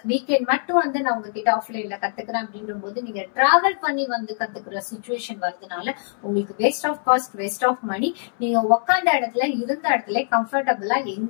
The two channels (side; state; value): right; silent; 63 dB below the other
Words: வீக்கெண்ட் மட்டும் நான் உங்ககிட்ட ஆஃப்லைன்ல கத்துக்கிறேன் அப்படின்ற போது நீங்க டிராவல் பண்ணி கத்துக்கிற சிச்சுவேஷன் வருதுனால உங்களுக்கு waste of cost waste of money. நீங்க உட்காந்த இடத்துல இருந்த இடத்துல கம்ஃபர்டபுளா